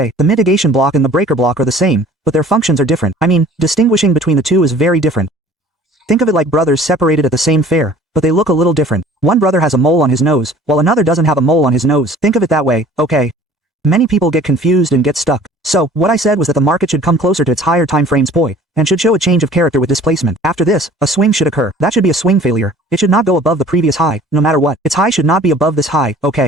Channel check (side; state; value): both; normal; correlation 0.49